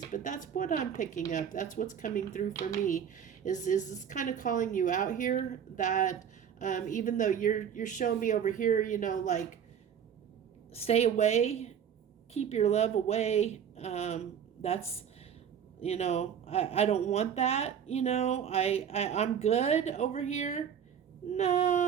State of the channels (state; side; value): quieter; left; 8.3 dB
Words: But that's what I'm picking up. That's what's coming through for me. Is this kind of calling you out here? That even though you're showing me over here, you know, like stay away, keep your love away. That's, you know, I don't want that. You know, I'm good over here.